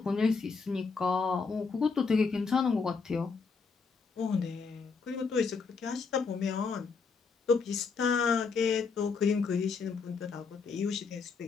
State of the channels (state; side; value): quieter; right; 5.0 dB